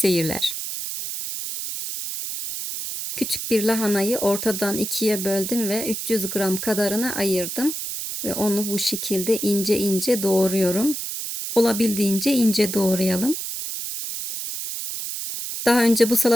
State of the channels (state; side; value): noise; right; hiss, 5 dB below the sound